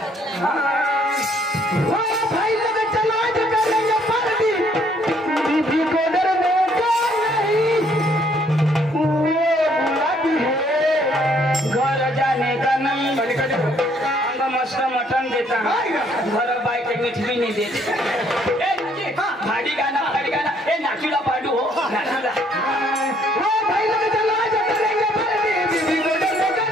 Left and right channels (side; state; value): both; normal; correlation 0.66